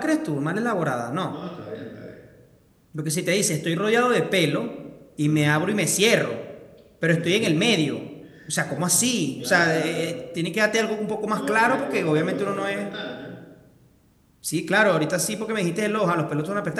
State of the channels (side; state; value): both; identical; correlation 1.00